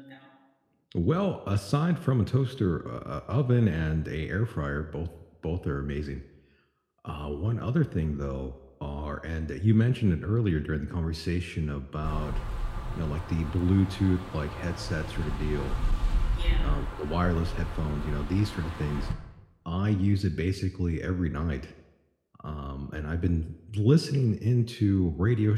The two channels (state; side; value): identical; both; correlation 1.00